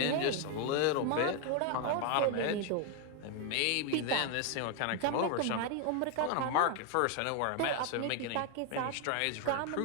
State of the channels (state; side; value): different; both; correlation 0.01